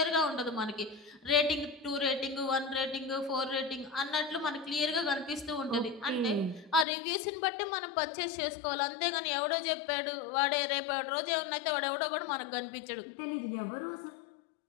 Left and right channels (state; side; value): drops out; right; at 6.9 s